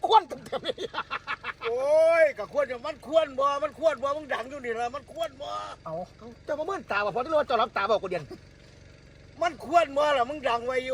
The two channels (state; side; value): identical; both; correlation 1.00